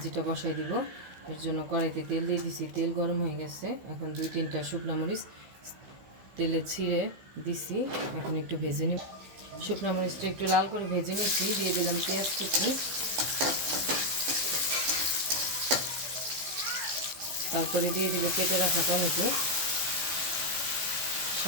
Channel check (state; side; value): late; left; 15 ms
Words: বসাই দিব। এর জন্য কড়াইতে তেল দিয়ে দিছি, তেল গরম হয়ে গেছে। এখন 2-3টা শুকনো মরিচ তেলে ছিঁড়ে দিছি, এখন একটু ভেজে নিব। শুকনো মরিচটা একটু লাল করে ভেজে নিচ্ছি, দিয়ে দিলাম পেঁয়াজ কুচি, তারপরে দিয়ে দিব কেটে রাখা টমেটো,